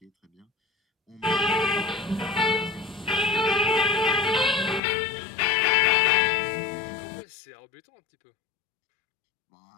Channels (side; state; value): right; drops out; at 4.8 s